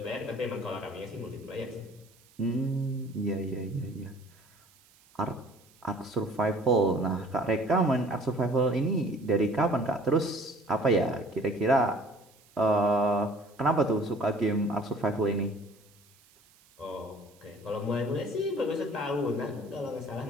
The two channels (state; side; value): noise; right; hiss, 29 dB below the sound